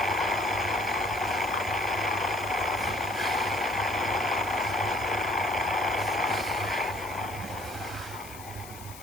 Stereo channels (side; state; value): left; noise; hiss, 16 dB below the sound